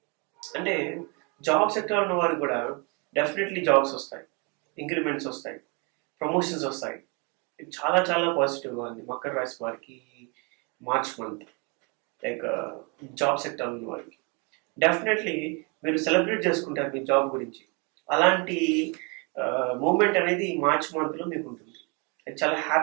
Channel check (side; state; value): left; quieter; 32.3 dB